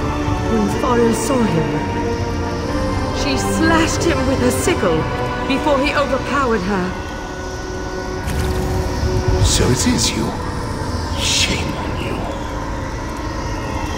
Fariel saw him. She slashed him with her sickle before he overpowered her. So it is you. Shame on you.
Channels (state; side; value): identical; both; correlation 1.00